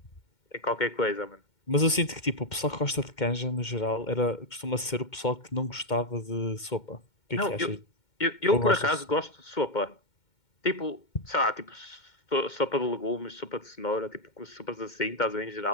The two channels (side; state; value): right; late; 2.2 ms